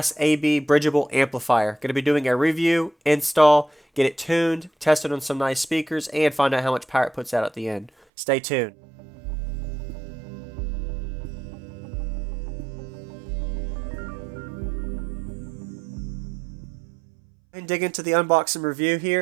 AB bridgeable amplifier. Going to be doing a review, install, get it tuned, test it on some nice speakers, and find out how much power it puts out at the end. Stay tuned. And dig into the unboxing review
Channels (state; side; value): drops out; left; at 7.9 s